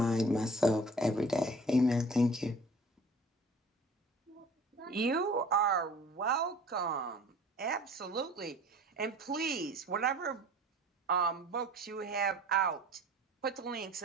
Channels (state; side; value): normal; both; correlation 0.47